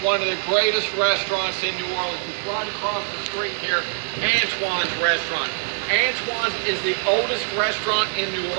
one of the greatest restaurants in New Orleans. It's right across the street here, Antoine's Restaurant. Antoine's is the oldest restaurant in New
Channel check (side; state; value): left; silent; digital silence